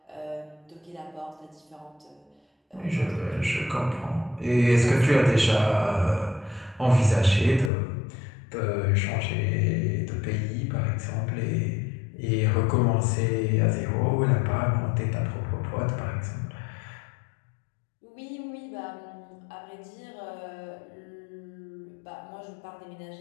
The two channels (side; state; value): right; drops out; at 7.7 s